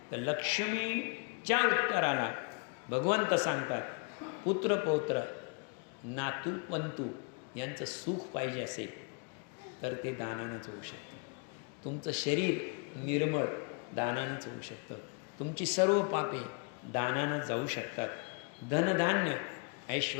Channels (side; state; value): right; quieter; 36.9 dB